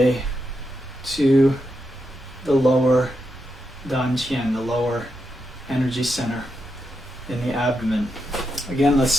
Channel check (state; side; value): normal; both; correlation 0.85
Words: to the lower Dantian, the lower energy center in the abdomen. Again, let's